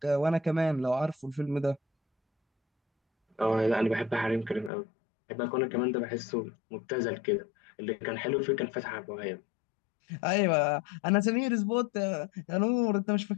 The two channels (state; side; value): drops out; right; at 4.7 s